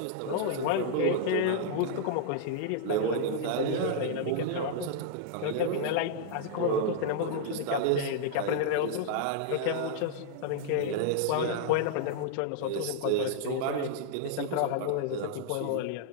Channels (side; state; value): both; different; correlation -0.01